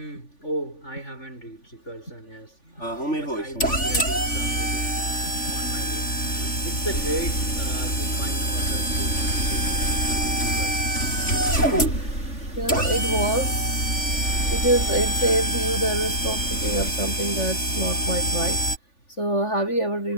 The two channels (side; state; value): right; late; 3.5 ms